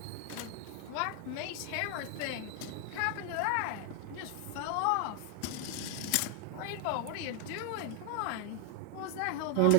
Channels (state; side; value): different; both; correlation 0.00